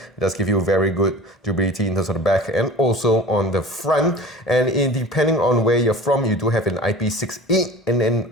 does give you very good durability in terms of the back and also on the front. And depending on where you're from, you do have an IP68 and an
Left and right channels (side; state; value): both; normal; correlation 0.39